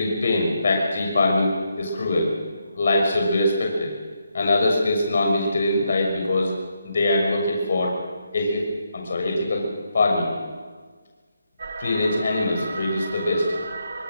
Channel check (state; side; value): inverted; both; correlation -0.81